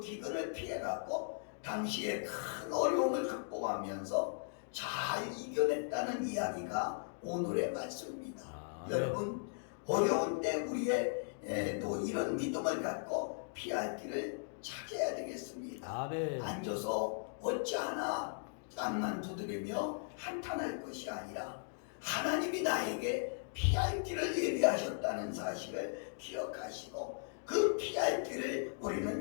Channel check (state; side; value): silent; right; digital silence